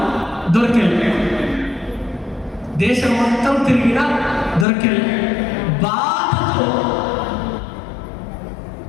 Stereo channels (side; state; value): right; drops out; at 4.7 s